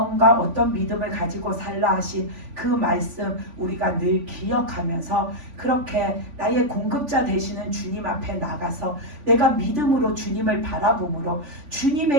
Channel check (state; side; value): late; left; 3.5 ms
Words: 어떤 믿음을 가지고 살라 하신 그 말씀 우리가 늘 기억하면서, 그렇게 나의 공급자 되시는 주님 앞에 나가서 내가 믿음으로 주님을 바라봄으로